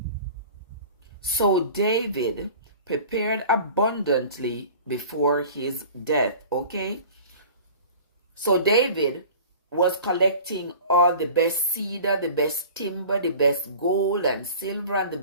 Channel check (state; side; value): inverted; both; correlation -0.42